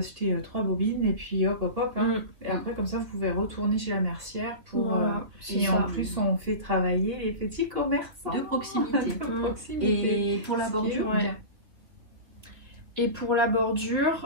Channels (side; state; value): left; late; 3.1 ms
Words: 3 bobines et puis hop, hop, hop. Hein. Et après, comme ça, vous pouvez retourner chez la mercière pour... Voilà, et en plus, on fait travailler les petits commerçants. De proximité. Et pour la bordure, Et pour la